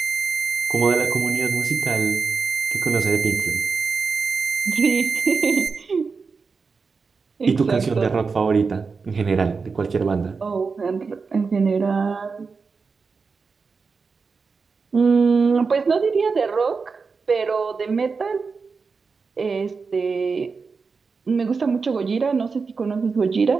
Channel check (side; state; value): left; quieter; 4.9 dB